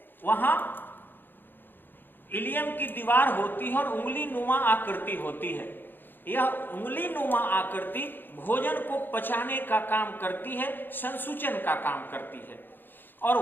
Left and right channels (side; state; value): right; late; 0.095 ms